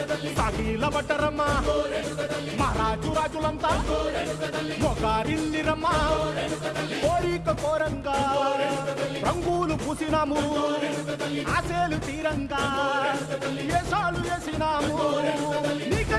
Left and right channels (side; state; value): both; identical; correlation 1.00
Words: సాగిల పడ్డరమ్మా మహారాజు రాజులంతా మొగారిల్లిరమ్మా కోరిక కోరంగా రంగులు పూసినాము ఆశలు తీరంగా ఏసాలు వేసినాము